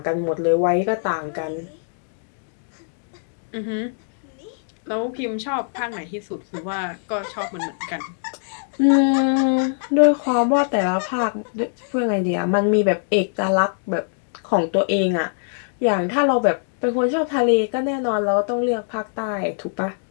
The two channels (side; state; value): right; silent; digital silence